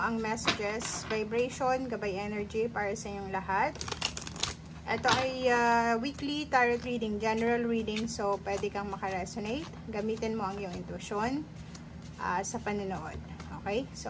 ang messages, vibration, gabay energy para sa inyong lahat. Ito ay weekly tarot reading, general reading, so pwede kang makaresonate. Gamitin mo ang iyong intuition sa panonood. Okay? So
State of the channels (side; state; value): both; identical; correlation 1.00